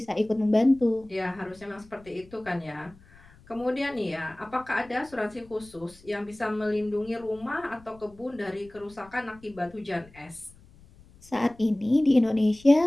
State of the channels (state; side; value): noise; left; rumble, 25 dB below the sound